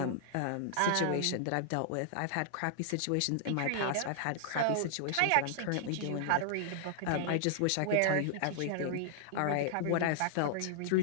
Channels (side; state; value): both; different; correlation -0.01